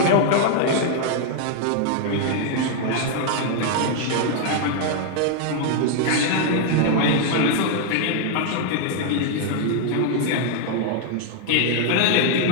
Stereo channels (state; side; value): different; both; correlation 0.00